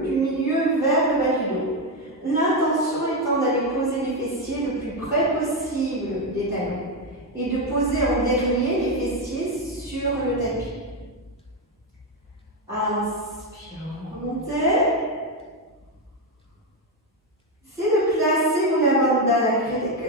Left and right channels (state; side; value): normal; both; correlation 0.08